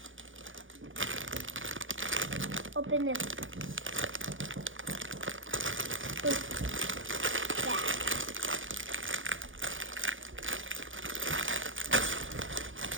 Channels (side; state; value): left; late; 0.57 ms